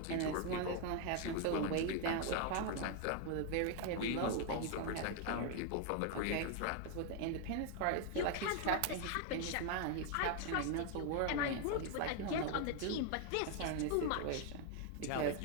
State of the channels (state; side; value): different; both; correlation 0.01